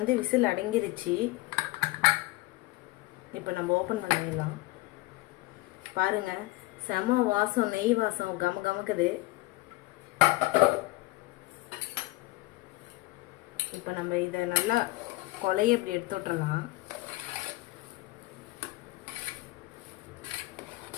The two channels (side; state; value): right; quieter; 20.2 dB